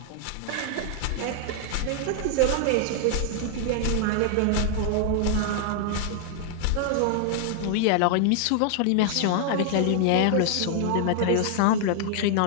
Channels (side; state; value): both; different; correlation 0.00